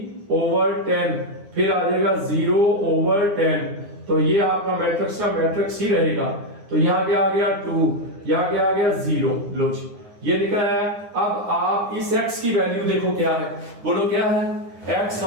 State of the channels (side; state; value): left; late; 9.7 ms